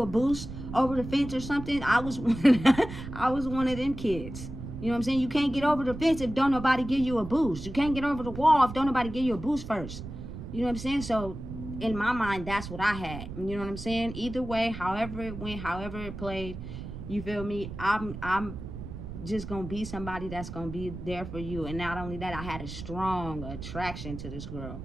a boost over the fence or something? I was one of them kids. You know what I'm saying? You can't get over the fence if don't nobody give you a boost. You can't get over the wall if don't nobody give you a boost first. You know what I'm saying? So in my mind, that's what I had. You know what I'm saying? Either way, however it went, however it played, you feel me, I'm just gonna be somebody that's gonna be there for you. And not only that, I had a strong attraction to this girl.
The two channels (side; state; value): right; noise; rumble, 10 dB below the sound